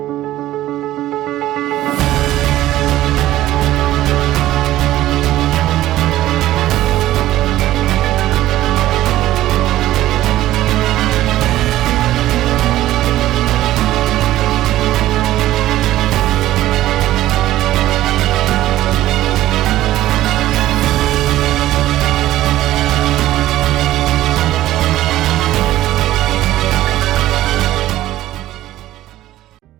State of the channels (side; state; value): left; quieter; 14.6 dB